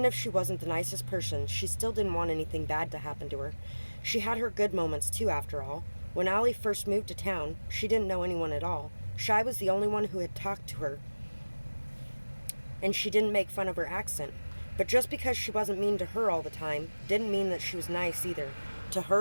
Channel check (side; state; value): both; inverted; correlation -1.00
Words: if she wasn't the nicest person, she still didn't want anything bad to happen to her. She had her good moments too, after all. When Allie first moved to town, she didn't know anyone at all. Shy was the only one who had talked to her, and she didn't make fun of her accent. But just because she wasn't mean to her all the time, didn't mean that she was nice either, to